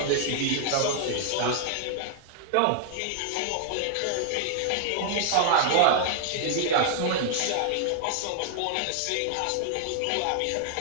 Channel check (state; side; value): different; both; correlation 0.00